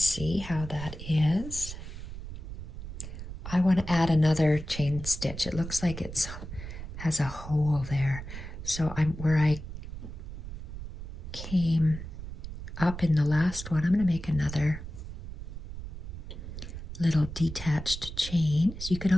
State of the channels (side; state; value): right; noise; rumble, 9 dB below the sound